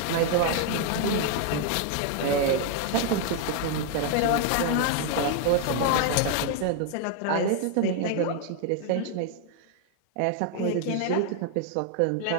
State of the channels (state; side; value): different; both; correlation 0.00